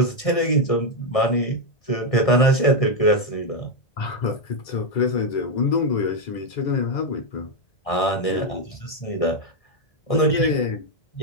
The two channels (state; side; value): late; right; 1.6 ms